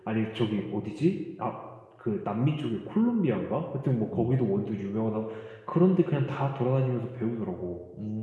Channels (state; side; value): identical; both; correlation 1.00